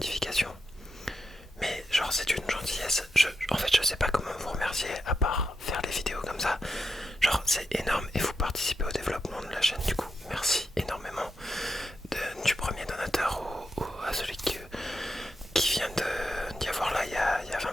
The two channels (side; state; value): both; normal; correlation 0.86